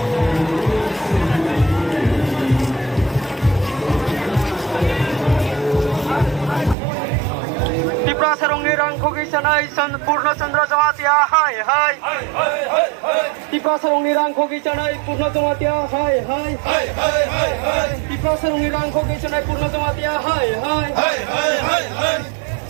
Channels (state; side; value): drops out; left; at 6.8 s